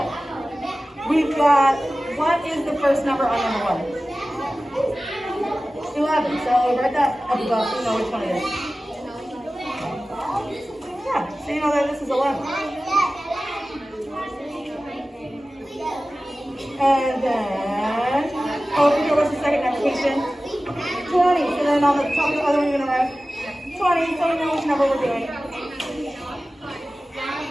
we've got, what is the first number on number 1? 11. So write that up above so you know which one it is. Yeah, so you know that this is 11. And then, over here, what's the second application? 20. So then on the top of the other one, you're going to write 20, so we know which number we're doing.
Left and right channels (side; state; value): both; normal; correlation 0.96